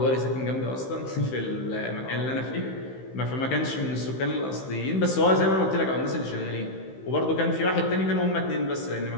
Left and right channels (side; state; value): right; late; 15 ms